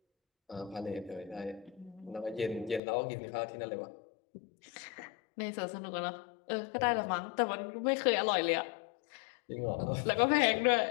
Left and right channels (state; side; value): drops out; right; at 2.8 s